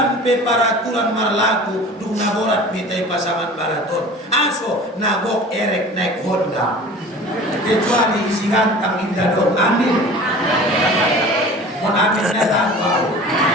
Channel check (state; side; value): normal; both; correlation 0.41